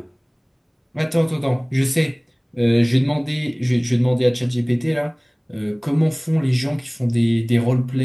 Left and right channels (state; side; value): identical; both; correlation 1.00